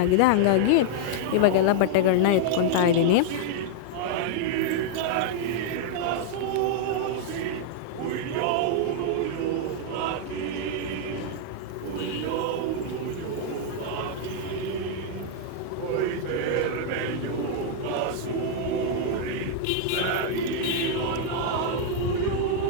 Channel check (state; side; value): different; both; correlation -0.01